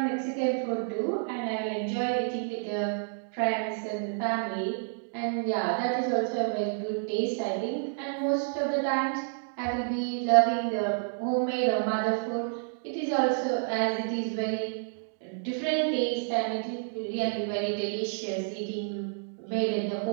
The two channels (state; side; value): silent; left; digital silence